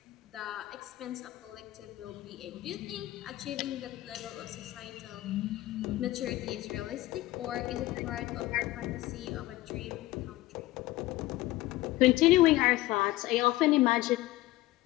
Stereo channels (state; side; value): quieter; right; 17.4 dB